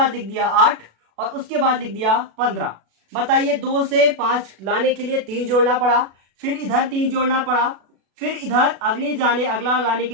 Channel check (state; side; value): late; left; 36 ms